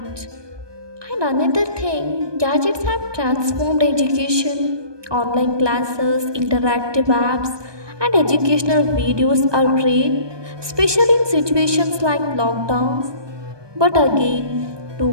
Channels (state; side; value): late; left; 1.2 ms